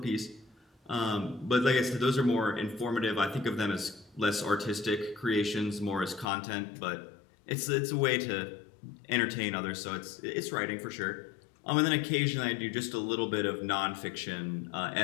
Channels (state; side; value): drops out; right; at 6.2 s